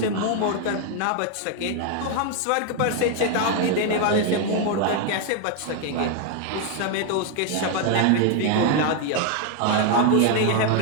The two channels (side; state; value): both; different; correlation 0.01